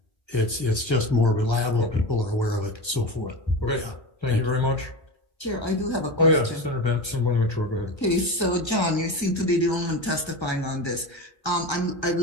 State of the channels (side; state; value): right; late; 1.3 ms